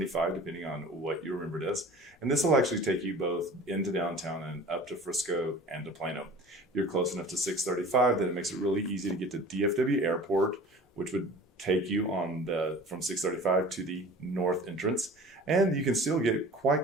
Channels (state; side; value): normal; both; correlation 0.42